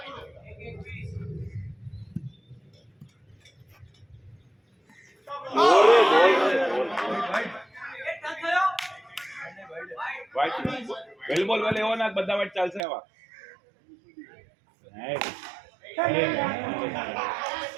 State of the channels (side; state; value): left; drops out; at 12.8 s